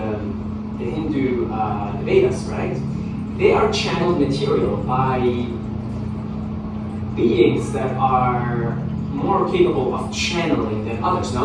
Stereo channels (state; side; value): identical; both; correlation 1.00